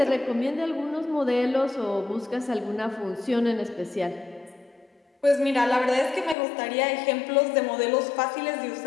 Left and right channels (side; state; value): right; drops out; at 6.4 s